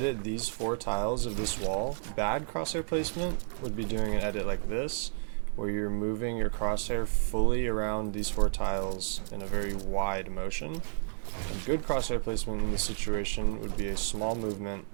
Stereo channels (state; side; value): silent; left; digital silence